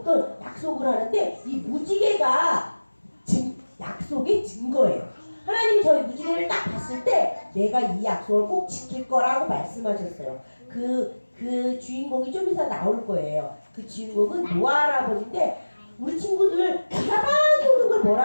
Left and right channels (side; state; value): both; inverted; correlation -1.00